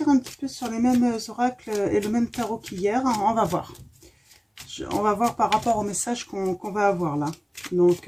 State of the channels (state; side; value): identical; both; correlation 1.00